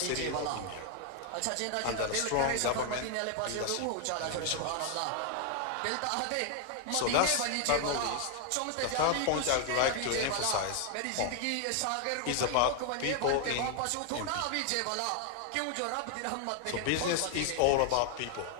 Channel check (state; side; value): different; both; correlation 0.00